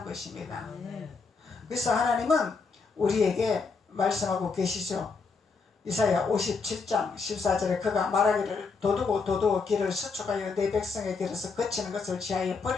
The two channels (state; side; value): quieter; right; 4.7 dB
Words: 것입니다. 그래서 하나님은 우리에게 말씀하고 계시죠. 이사야 57장 14절에 그가 말하기를 도두고 길을 수축하여 내 백성의 길에서 거치는 것을 지하여